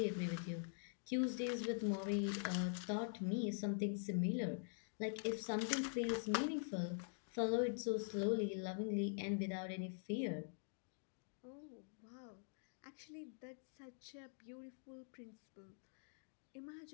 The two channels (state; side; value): silent; right; digital silence